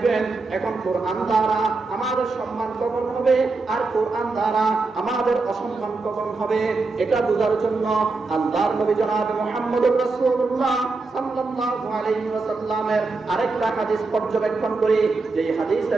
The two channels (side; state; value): left; quieter; 3.8 dB